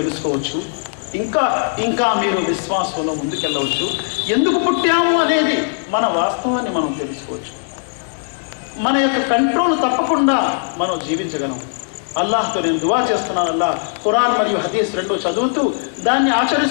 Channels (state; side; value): silent; right; digital silence